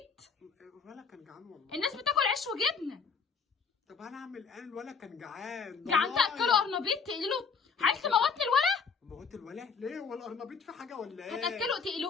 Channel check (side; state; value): right; quieter; 5.7 dB